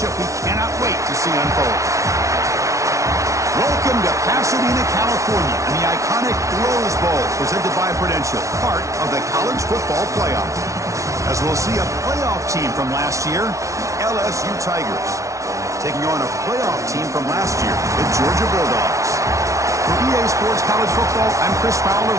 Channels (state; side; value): late; left; 0.15 ms